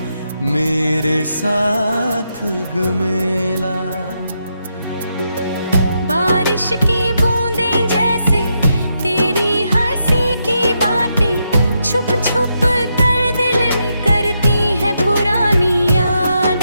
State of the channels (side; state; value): both; inverted; correlation -0.82